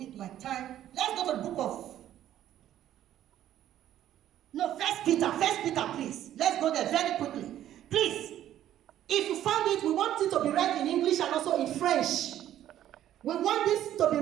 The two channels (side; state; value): left; quieter; 12.0 dB